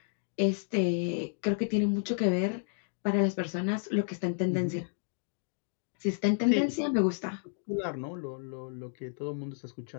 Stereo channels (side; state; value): right; silent; digital silence